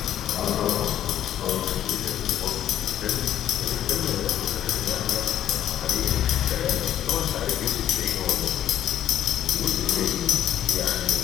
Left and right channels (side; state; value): right; quieter; 11.2 dB